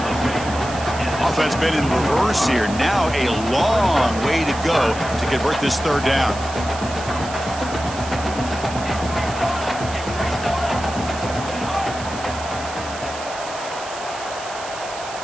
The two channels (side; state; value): right; noise; hiss, 13 dB below the sound